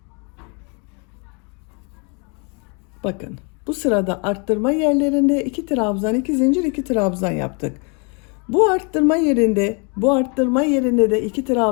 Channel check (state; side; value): quieter; right; 34.9 dB